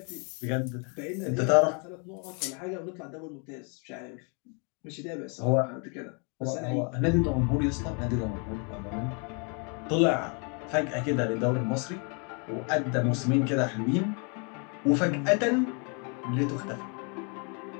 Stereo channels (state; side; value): quieter; right; 36.3 dB